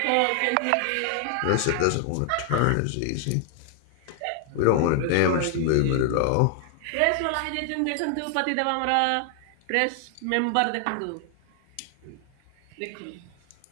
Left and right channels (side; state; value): both; different; correlation 0.00